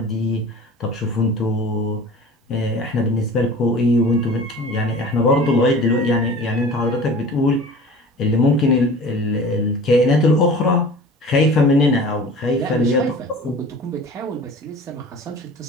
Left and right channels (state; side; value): normal; both; correlation 0.40